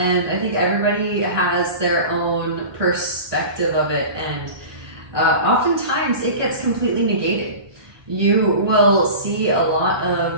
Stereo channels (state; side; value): late; left; 1.2 ms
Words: I think everybody has their own perspective of it, and oftentimes it gets completely negated. You will see a lot